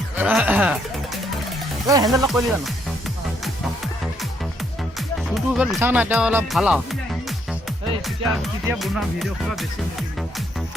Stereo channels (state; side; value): normal; both; correlation 0.72